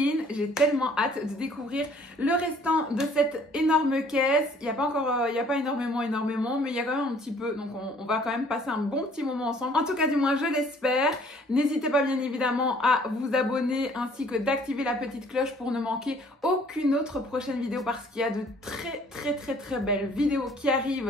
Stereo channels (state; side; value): normal; both; correlation 0.57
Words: J'ai tellement hâte de découvrir le restant de cette énorme caisse. Il n'y a pas encore, il n'y a pas énormément, mais il y a quand même un petit peu. Donc on va quand même passer un bon petit moment ensemble. En tout cas, du moins, je l'espère. N'hésitez pas bien évidemment à vous abonner ainsi que d'activer la petite cloche pour ne manquer aucune autre prochaine vidéo parce qu'il y a de très belles vidéos qui